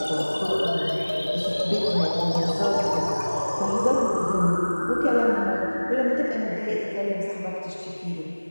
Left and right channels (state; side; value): inverted; both; correlation -1.00